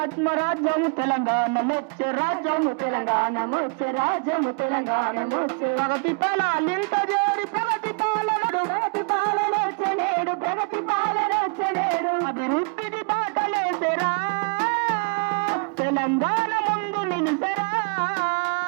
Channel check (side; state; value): left; quieter; 34.7 dB